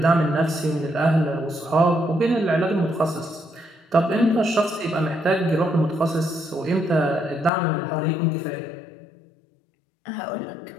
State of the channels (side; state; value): right; drops out; at 7.5 s